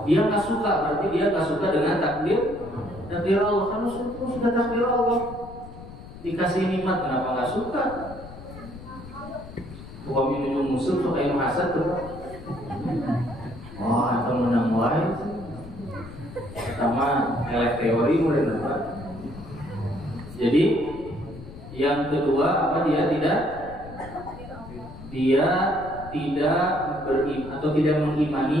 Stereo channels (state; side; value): noise; left; rumble, 15 dB below the sound